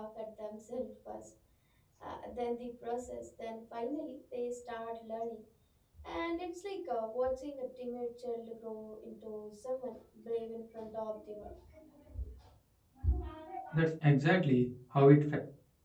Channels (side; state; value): both; identical; correlation 1.00